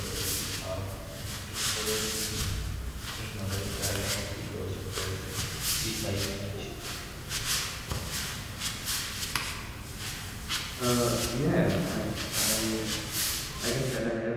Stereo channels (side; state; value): both; identical; correlation 1.00